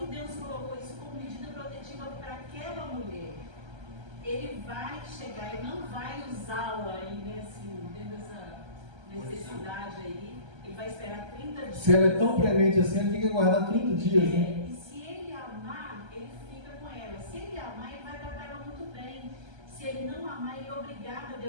Deus colocou isso como medida protetiva para aquela mulher. Ele vai chegar e não vai usá-la aí, né, assim, dentro dessa necessidade aí. Ele vai esperar 30 dias. Se ela é tão premente assim, ele tem que aguardar 30 dias, né? E se ele amar, ele fica com ela. Se ele amar, ele vai tratar ela muito bem. Se ele não amar, ele é obrigado a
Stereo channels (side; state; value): left; late; 1.3 ms